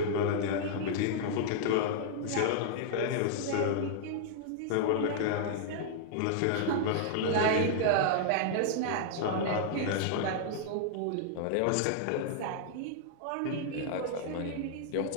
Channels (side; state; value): both; different; correlation -0.01